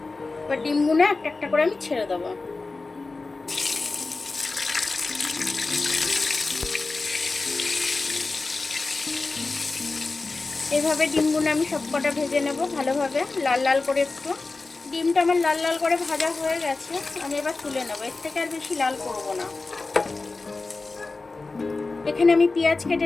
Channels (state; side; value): quieter; right; 3.6 dB